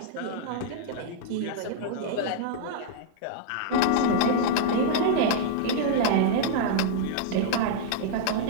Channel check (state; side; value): different; both; correlation -0.01